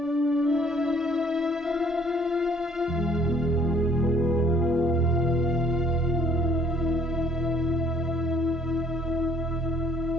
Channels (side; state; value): both; normal; correlation 0.59